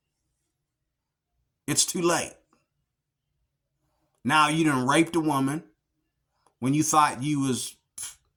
it's too late. Now you done raped a woman when you thought you was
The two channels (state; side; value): identical; both; correlation 1.00